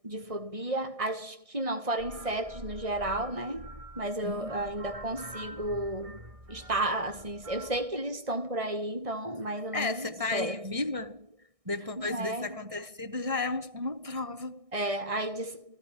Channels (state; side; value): late; left; 1.6 ms